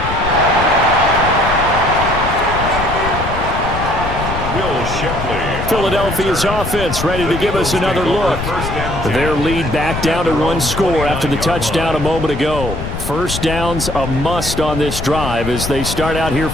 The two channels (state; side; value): noise; left; rumble, 6 dB below the sound